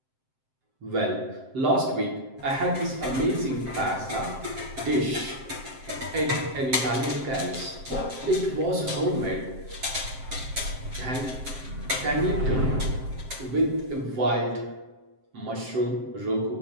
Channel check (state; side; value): late; left; 7.6 ms